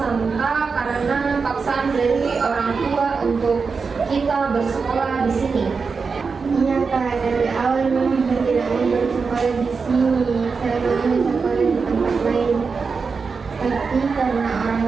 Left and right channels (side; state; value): left; quieter; 5.0 dB